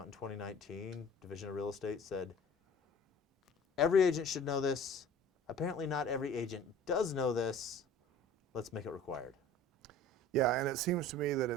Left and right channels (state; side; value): normal; both; correlation 0.45